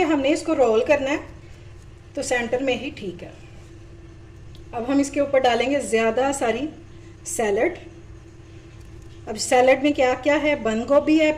हमने इसको रोल करना है तो सेंटर में ही ठीक है। अब हम इसके ऊपर डालेंगे ज़्यादा सारी सैलड। अब सैलड में क्या क्या है, बंद गोभी है,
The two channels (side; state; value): both; identical; correlation 1.00